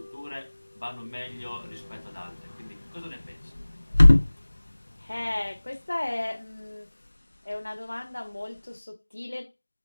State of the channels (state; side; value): inverted; both; correlation -1.00